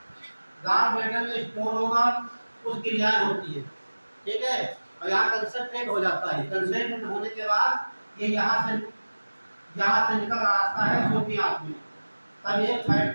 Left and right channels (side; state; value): both; inverted; correlation -1.00